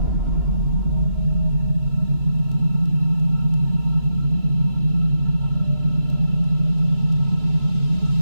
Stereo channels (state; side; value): late; left; 2.9 ms